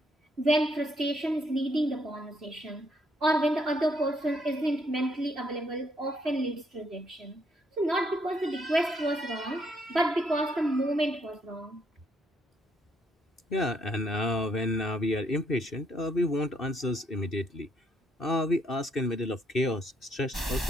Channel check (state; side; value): normal; both; correlation 0.71